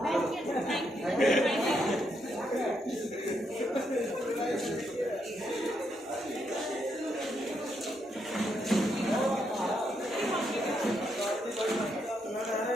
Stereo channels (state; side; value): normal; both; correlation 0.78